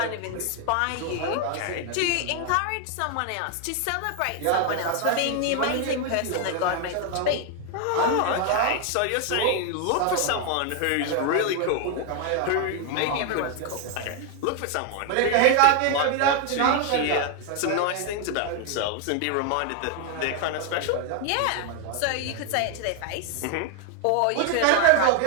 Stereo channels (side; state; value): both; different; correlation 0.01